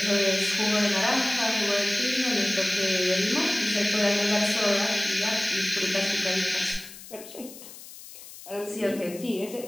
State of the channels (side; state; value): left; noise; hiss, 16 dB below the sound